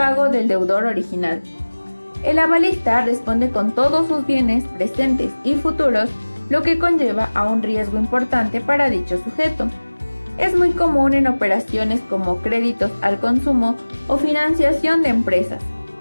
del deudor original. El avalista responde con todos sus bienes presentes y futuros, lo que conlleva a un riesgo importante para dicho sujeto. Es muy común en operaciones como créditos al consumo o financiación de empresas.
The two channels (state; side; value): inverted; both; correlation -1.00